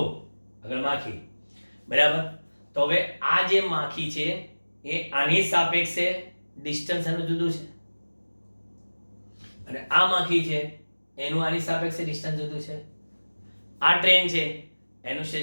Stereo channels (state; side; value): inverted; both; correlation -1.00